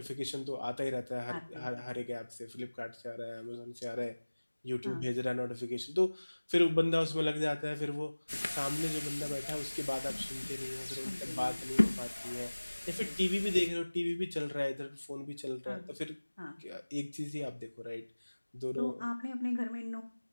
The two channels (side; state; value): both; inverted; correlation -1.00